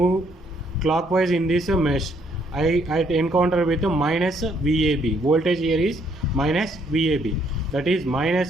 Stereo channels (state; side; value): normal; both; correlation 0.69